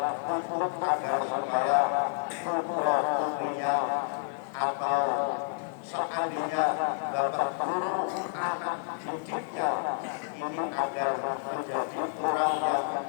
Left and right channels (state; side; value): silent; right; 58 dB below the other